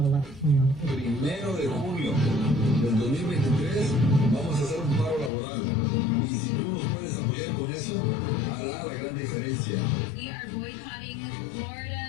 a Latino. 1 de junio del 2023 vamos a hacer un paro laboral. Y si tú nos puedes apoyar con eso, hará la gran diferencia. We are boycotting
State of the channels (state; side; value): drops out; right; at 5.3 s